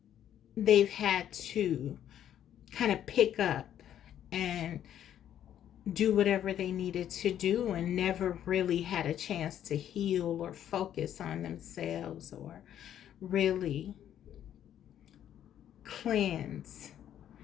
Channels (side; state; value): right; quieter; 10.6 dB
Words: they've had to kind of pick up and do whatever they needed to do, and never really had a chance to heal or focus on themselves, or really cleanse.